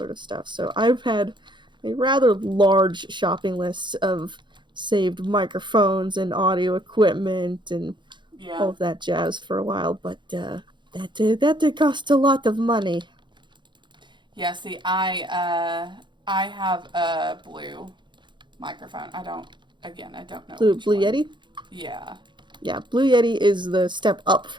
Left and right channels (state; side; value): late; left; 0.23 ms